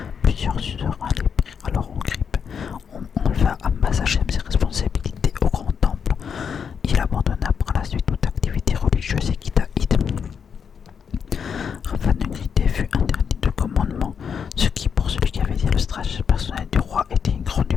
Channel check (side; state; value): right; quieter; 6.9 dB